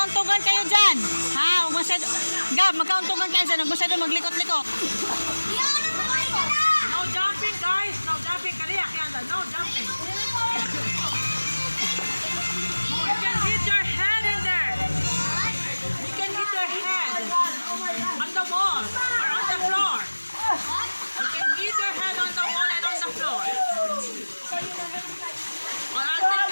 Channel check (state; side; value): inverted; both; correlation -1.00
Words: magkauntugan kayo dyan. Ha? Huwag masyado. Gab, magkauntugan kayo dyan. Huwag masyado maglikot-likot. No jumping, guys. No jumping. Kaliya, kaya no jumping. You can hit your head in there. You can hit your head on the wall or on the floor. You can hit your head on the wall and on the floor. Or I'll take